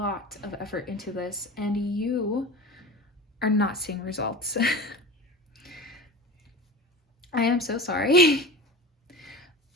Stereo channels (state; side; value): normal; both; correlation 0.32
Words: effort into this, and you are not seeing results. I am so sorry.